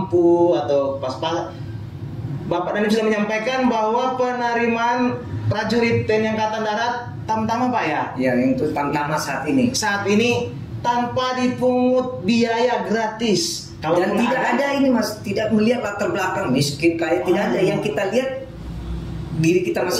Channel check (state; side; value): identical; both; correlation 1.00